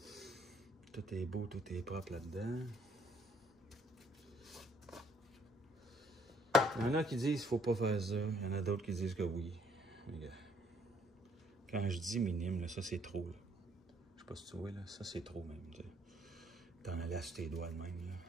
tout est beau, tout est propre là-dedans. Il y en a qui disent qu'il ne faut pas faire ça. Il y en a d'autres qui disent que oui. Regarde. Quand je dis minime, là, ça c'est trop. Là. Je sais pas si tu vois, là, ça c'est trop même. T'en allais sur tes doigts de même. Là.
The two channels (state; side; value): normal; both; correlation 0.64